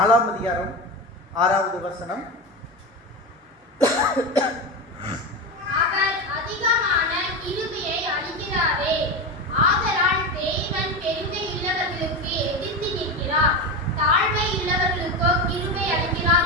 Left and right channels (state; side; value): normal; both; correlation 0.19